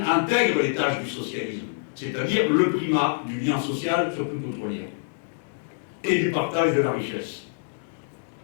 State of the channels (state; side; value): silent; right; digital silence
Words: intègre les tâches du socialisme, c'est-à-dire le primat du lien social sur tout autre lien, et du partage de la richesse,